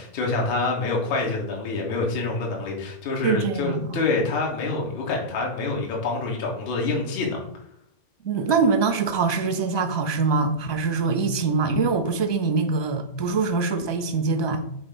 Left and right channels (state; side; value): late; right; 1.2 ms